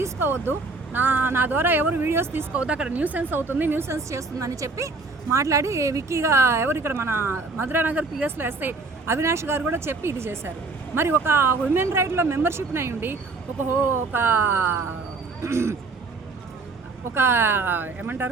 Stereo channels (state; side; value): quieter; left; 3.8 dB